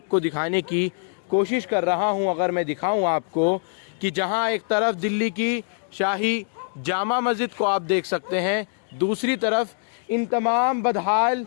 दिखाने की कोशिश कर रहा हूं, अगर मैं दिखाऊं आपको कि जहां एक तरफ दिल्ली की शाही जामा मस्जिद को आप देख सकते हैं, दूसरी तरफ इन तमाम बदहाल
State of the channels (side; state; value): right; silent; digital silence